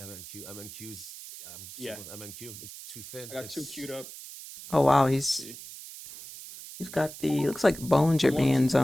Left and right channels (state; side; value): noise; right; hiss, 13 dB below the sound